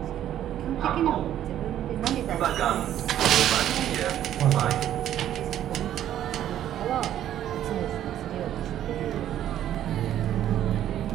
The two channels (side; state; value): left; quieter; 11.4 dB